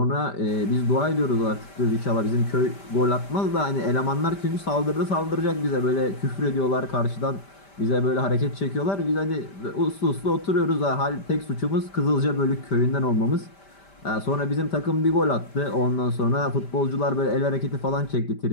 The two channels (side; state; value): right; late; 5.1 ms